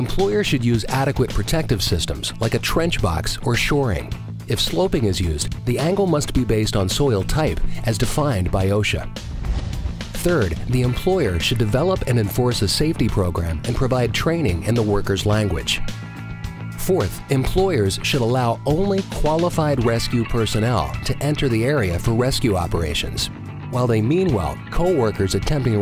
should use adequate protective systems like a trench box or shoring. If sloping is used, the angle must be based on soil type as defined by OSHA. Third, the employer should develop and enforce a safety program and provide training in the worker's language. Fourth, employers should allow only qualified rescue personnel to enter the area for rescue operations, while they mean well, co-workers attempting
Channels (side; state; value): both; identical; correlation 1.00